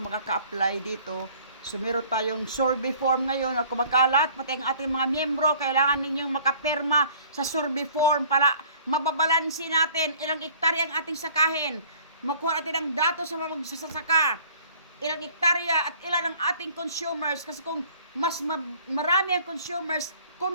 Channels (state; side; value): inverted; both; correlation -0.53